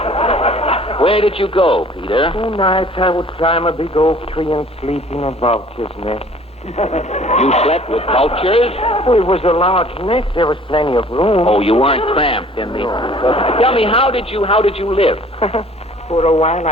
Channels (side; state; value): both; normal; correlation 0.52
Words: Where did you go, Peter? Two nights I would climb a big oak tree and sleep in a vulture's nest. You slept with vultures? Well, it was a large nest. There was plenty of room. Oh, you weren't cramped in the... Tell me, how did you live? For a while,